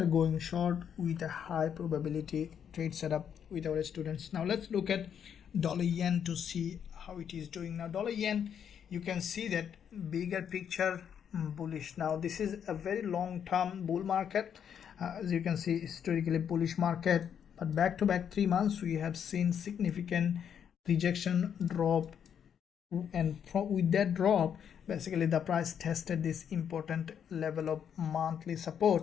going short with a high probability trade setup with our students. Now let's look at dollar yen to see how it is doing. Now dollar yen, you can see that bigger picture bullish. Now this is a very long-term bull market. As you can see, historically bullish market, but back to back 3 months we have seen significant rejection, drop, and with that drop basically the price tested this important level of monthly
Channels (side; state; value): right; quieter; 8.3 dB